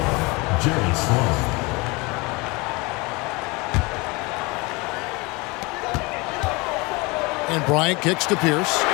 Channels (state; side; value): quieter; right; 25.9 dB